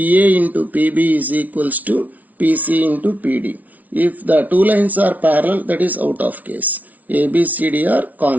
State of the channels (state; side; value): late; left; 0.074 ms